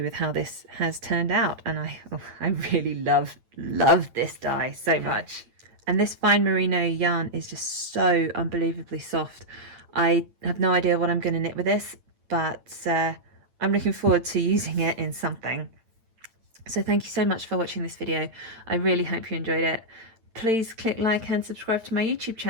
with how this has turned out, and I really love this dye so much. And this fine merino yarn is just so unbelievably soft. I have no idea what I'm going to knit with this, but I'm looking forward to using it in something. So thank you so much for watching this video. I really hope you enjoyed it. Please click like and subscribe to my YouTube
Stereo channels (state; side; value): late; left; 8.8 ms